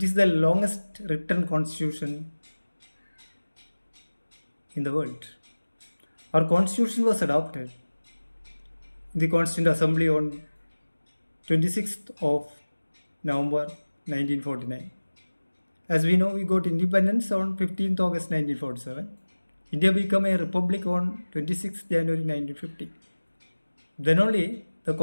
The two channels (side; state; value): both; inverted; correlation -1.00